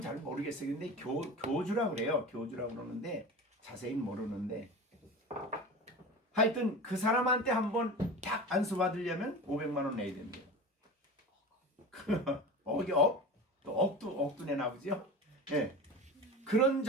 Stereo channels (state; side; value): normal; both; correlation 0.31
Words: 모르겠어요. 근데 교주라고 그래요. 교주라고 그러는데 자세히 모르는데 하여튼 그 사람한테 한번 딱 안수 받으려면 500만 원 내야 된대요. 억도 내나 보죠? 예. 그런